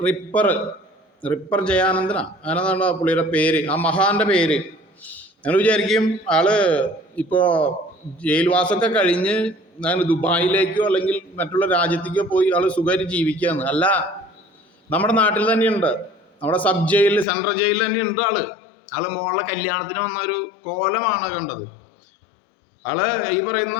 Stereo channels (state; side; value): drops out; right; at 17.2 s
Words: റിപ്പർ ജയാനന്ദനാ അങ്ങനെന്താ പുള്ളിയുടെ പേര്, ആ മഹാന്റെ പേര്. ഞങ്ങൾ വിചാരിക്കും ആള് ഇപ്പോ ജയിൽവാസമൊക്കെ കഴിഞ്ഞ് ദുബായിലേക്കോ അല്ലെങ്കിൽ മറ്റുള്ള രാജ്യത്തേക്കോ പോയി ആള് സുഖമായിട്ട് ജീവിക്കുകയെന്ന്. അല്ല, നമ്മുടെ നാട്ടിൽ തന്നെയുണ്ട്. നമ്മുടെ സബ് ജയിലിൽ, സെൻട്രൽ ജയിലിൽ തന്നെയുണ്ട് ആള് മോളുടെ കല്യാണത്തിന് വന്ന ഒരു കോലമാണ് കണ്ടത്. ആള് ഈ പറയുന്ന